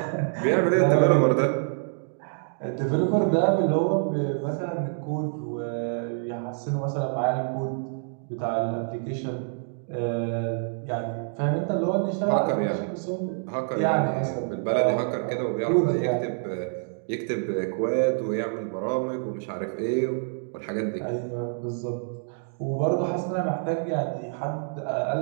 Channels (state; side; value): silent; left; digital silence